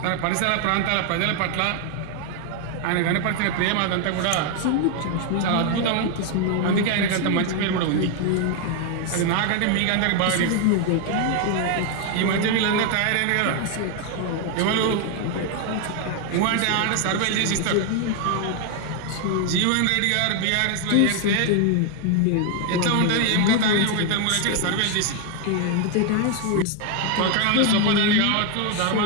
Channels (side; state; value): both; different; correlation 0.00